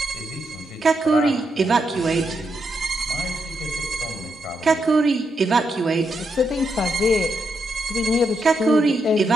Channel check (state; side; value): normal; both; correlation 0.82